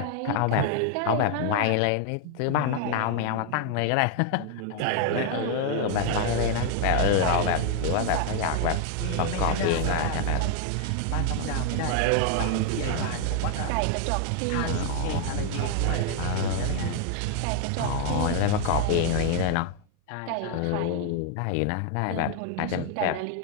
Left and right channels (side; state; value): both; different; correlation 0.00